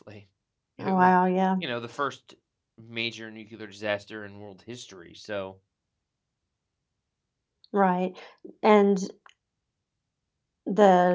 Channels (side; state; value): both; identical; correlation 1.00